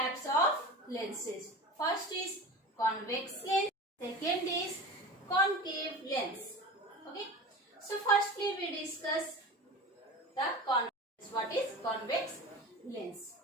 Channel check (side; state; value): both; normal; correlation 0.32